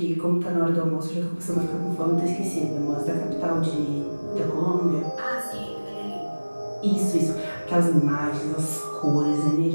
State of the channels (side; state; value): both; inverted; correlation -1.00